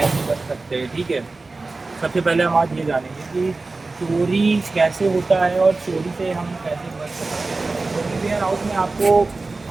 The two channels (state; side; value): quieter; left; 3.5 dB